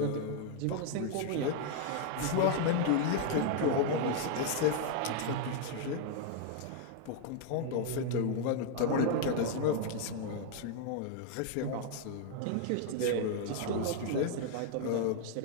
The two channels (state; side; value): different; both; correlation 0.00